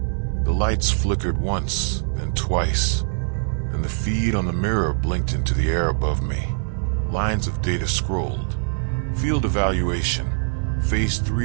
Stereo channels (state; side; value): silent; left; digital silence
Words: The lights flickered once, then twice. Then the feed on the mirror blinked into the air above me. Lines of data scrolled. Field evaluation. Phase